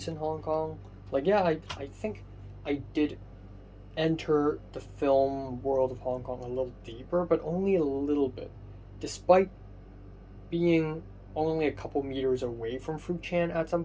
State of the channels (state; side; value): identical; both; correlation 1.00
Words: in Hong Kong. Like, yeah, I think I did enter the film world of Hong Kong a little deeper, but only a little bit. Despite being only a couple meters away from Fruit Chan at some